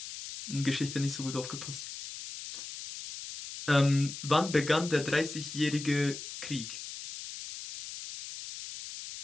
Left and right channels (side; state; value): left; noise; hiss, 10 dB below the sound